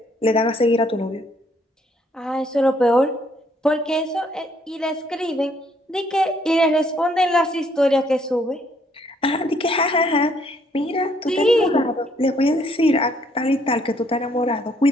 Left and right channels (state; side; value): normal; both; correlation 0.67